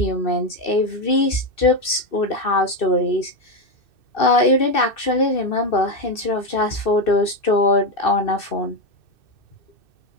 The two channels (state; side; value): late; right; 2.6 ms